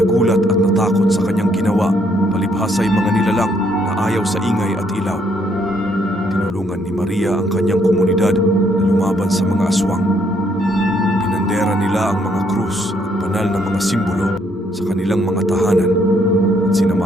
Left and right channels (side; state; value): both; normal; correlation 0.70